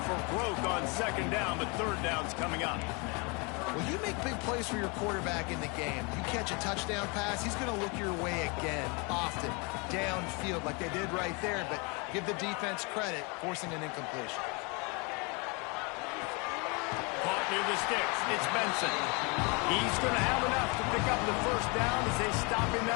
for broke on second down, but third down's coming up. Well, you make big plays for your quarterback in the game. You catch a touchdown pass, he's going to look your way again, often, downfield like they did right there, but give the defense credit, forcing an incompletion. Caught near the sticks. It's Benson. He's going to have enough to pick up the first down as they stop him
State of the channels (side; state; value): right; quieter; 30.6 dB